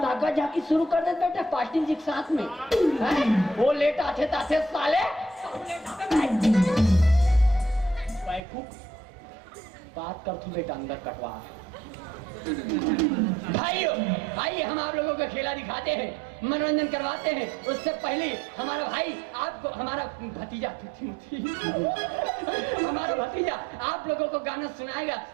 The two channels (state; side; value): drops out; left; at 8.4 s